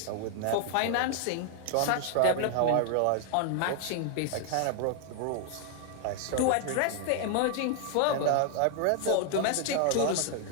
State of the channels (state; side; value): different; both; correlation 0.00